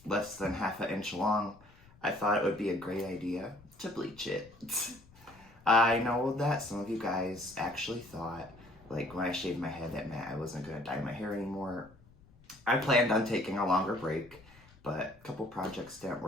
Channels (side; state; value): left; noise; rumble, 25 dB below the sound